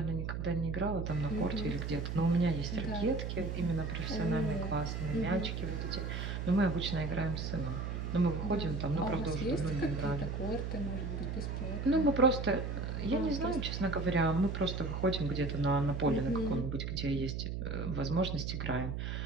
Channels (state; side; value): noise; right; hum, 3 dB below the sound